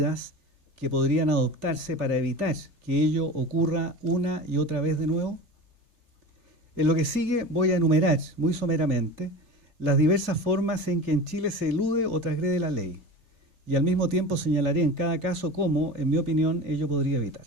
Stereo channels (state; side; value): late; left; 3.4 ms